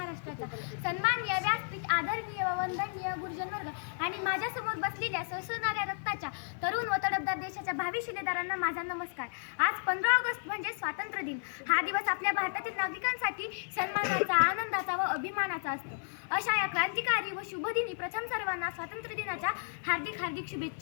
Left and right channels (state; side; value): silent; right; 56 dB below the other